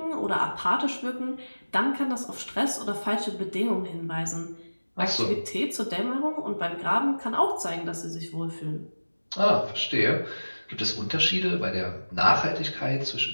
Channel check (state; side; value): inverted; both; correlation -1.00